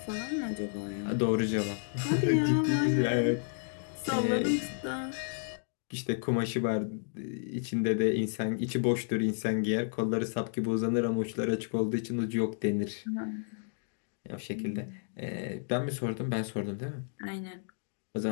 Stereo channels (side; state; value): right; silent; digital silence